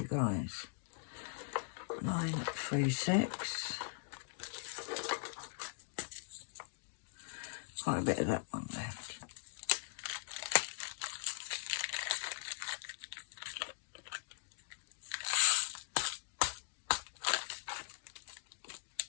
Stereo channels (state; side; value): silent; right; digital silence